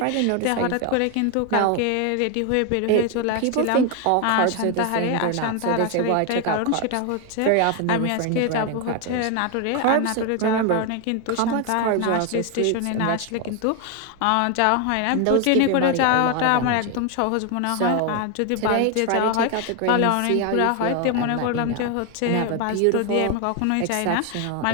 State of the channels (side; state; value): both; different; correlation 0.01